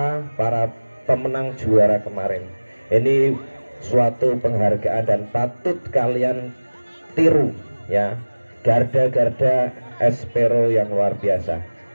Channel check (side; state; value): both; inverted; correlation -1.00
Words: para pemenang juara kemarin. Ini suatu penghargaan dan patut kalian tiru ya, garda-garda Espero yang luar biasa.